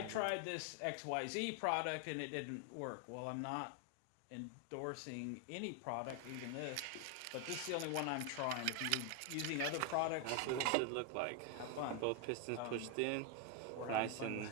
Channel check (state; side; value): different; both; correlation 0.01